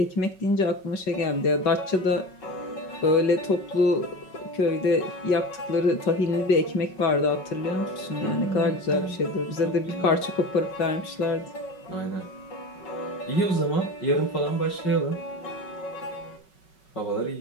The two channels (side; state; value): right; late; 5.3 ms